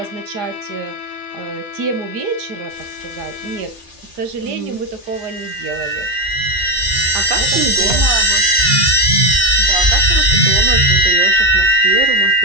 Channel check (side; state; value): left; late; 2.1 ms